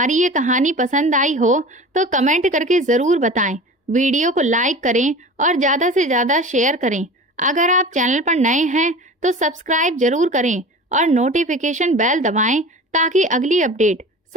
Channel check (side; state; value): both; normal; correlation 0.36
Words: ये कहानी पसंद आई हो तो कमेंट करके ज़रूर बताएं। वीडियो को लाइक करें और ज़्यादा से ज़्यादा शेयर करें। अगर आप चैनल पर नए हैं तो सब्सक्राइब जरूर करें और नोटिफिकेशन बेल दबाएं ताकि अगली अपडेट